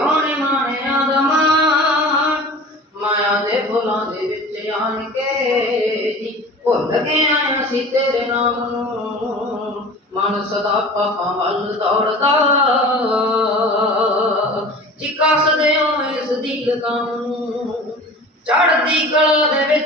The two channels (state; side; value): normal; both; correlation 0.39